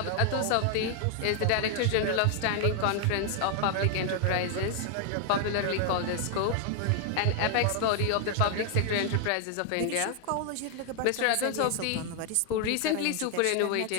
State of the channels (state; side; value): different; both; correlation 0.00